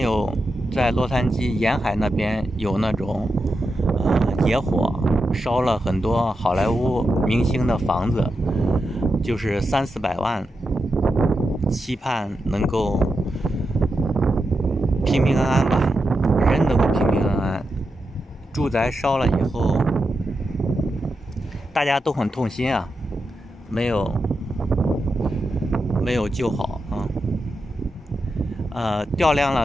在洛杉矶沿海那边有那种野火，烧了很多好莱坞明星的房子，就是300-400万，期盼能够平平安安吧，人能够平平安安。住宅烧了以后，大家都很痛心啊，没有救好啊。调量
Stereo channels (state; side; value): normal; both; correlation 0.88